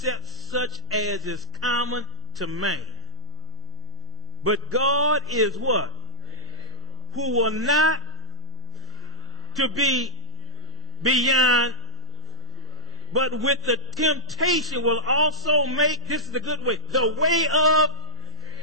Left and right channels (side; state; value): both; normal; correlation -0.18